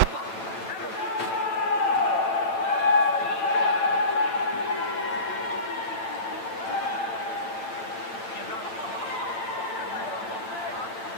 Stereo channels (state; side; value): late; right; 8.9 ms